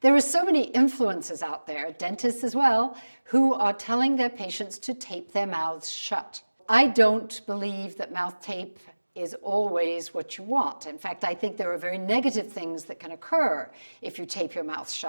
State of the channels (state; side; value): inverted; both; correlation -1.00